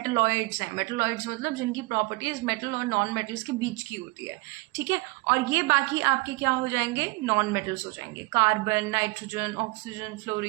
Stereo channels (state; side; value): quieter; left; 25.1 dB